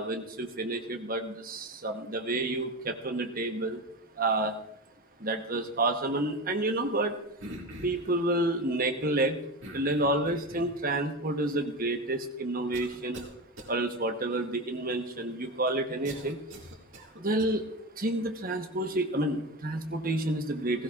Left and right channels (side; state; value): both; normal; correlation 0.23